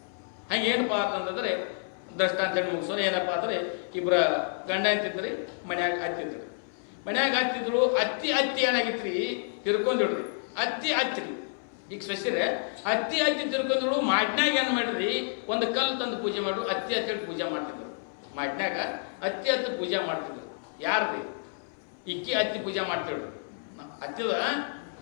ಹಂಗೆ ಏನಪ್ಪಾ ಅಂತಂದ್ರೆ ದೃಷ್ಟಾಂತ ಮುಗಿಸೋರು ಏನಪ್ಪಾ ಅಂದ್ರೆ ಇಬ್ಬರ ಗಂಡ ಅಂತಿದ್ರಿ, ಮನ್ಯಾಗ ಹತ್ತಿದ್ರು. ಅತ್ತಿ ಏನಾಗಿತ್ರಿ, ತಿರ್ಕೊಂಡಿಡ್ರಿ. ಅತ್ತಿ ಈಗ ಸ್ವಸ್ತಿರೆ ಅತ್ತಿ ತಿರ್ಕೊಂಡಿದ್ರು. ಮಾಡ್ನ್ಯಾಗ ಏನ್ ಮಾಡ್ರಿ, ಒಂದು ಕಲ್ಲು ತಂದು ಪೂಜೆ ಮಾಡು, ಅತ್ತಿ ಹೇಳಿ ಪೂಜೆ ಮಾಡ್ತಿದ್ರು. ಮಾಡ್ನ್ಯಾಗ ಅತ್ತಿ ಪೂಜೆ ಮಾಡ್ತಿದ್ರು. ಯಾರ್ರಿ, ಇಕ್ಕಿ ಅತ್ತಿ ಪೂಜೆ ಮಾಡ್ತಿದ್ರು. ಅತ್ತಿದ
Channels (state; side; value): silent; right; 58 dB below the other